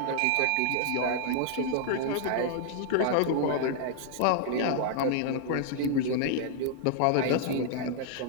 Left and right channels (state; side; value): different; both; correlation -0.01